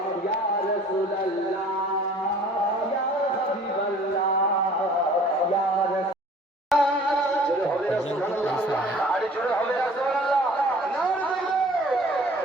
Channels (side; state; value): both; normal; correlation 0.50